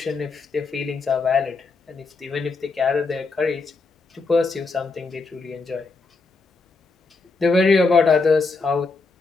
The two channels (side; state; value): right; quieter; 4.0 dB